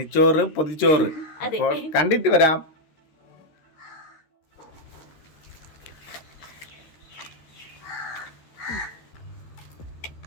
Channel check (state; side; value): late; right; 13 ms